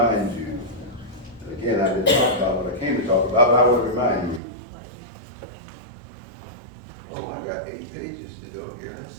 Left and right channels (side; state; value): left; drops out; at 4.4 s